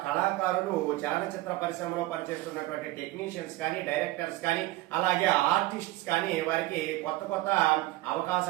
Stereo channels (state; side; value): quieter; left; 18.5 dB